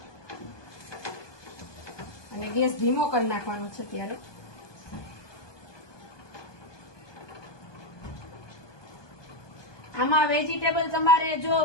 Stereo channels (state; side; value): late; right; 1.2 ms